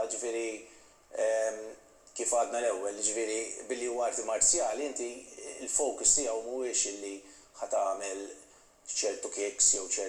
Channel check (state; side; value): identical; both; correlation 1.00